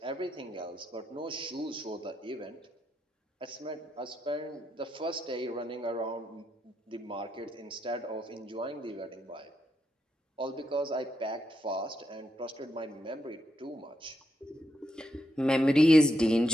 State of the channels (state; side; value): normal; both; correlation 0.82